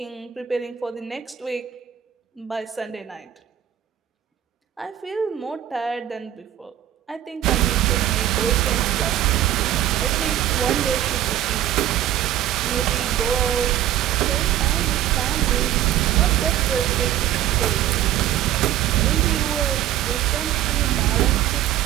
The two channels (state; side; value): quieter; left; 11.9 dB